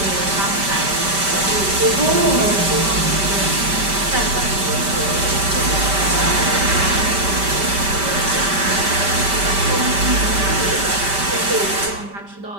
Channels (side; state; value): left; late; 5.1 ms